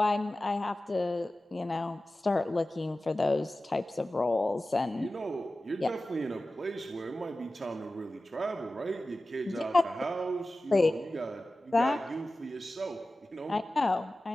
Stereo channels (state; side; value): normal; both; correlation 0.95